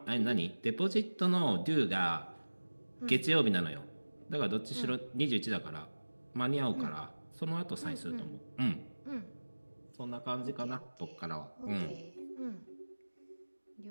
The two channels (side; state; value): both; inverted; correlation -1.00